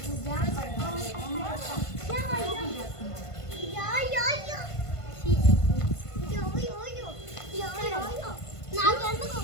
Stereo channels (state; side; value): late; right; 1.5 ms